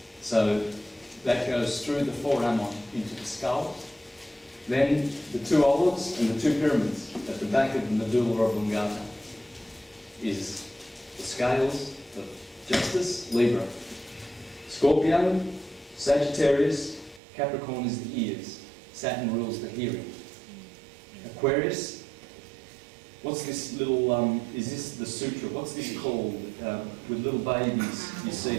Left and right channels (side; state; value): left; drops out; at 17.2 s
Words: So that goes through the foramen into the skull. Then the 2 olives and the 2 pyramids at the back of the medulla oblongata is the scales of justice, Libra. Scorpio, Sagittarius, Capricorn is the ears. Saturn rules the hearing. Aquarius, what's this little, is this the sutra? What's this called with little babies you